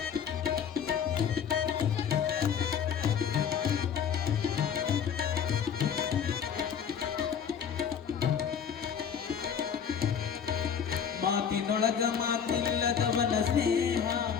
ಮಾತಿನೊಳಗ ಮಾತಿಲ್ಲದವನ ಸ್ನೇಹ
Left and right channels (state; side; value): quieter; right; 7.7 dB